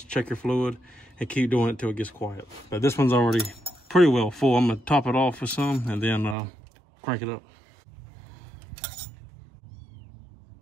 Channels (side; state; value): left; drops out; at 6.4 s